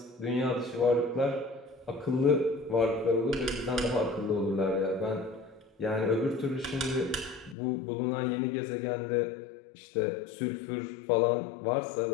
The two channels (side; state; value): right; drops out; at 7.6 s